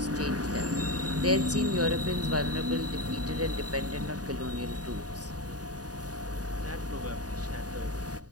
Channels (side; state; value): left; late; 0.68 ms